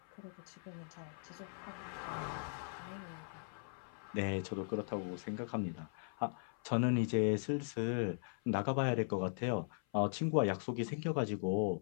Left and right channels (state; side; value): silent; right; 52 dB below the other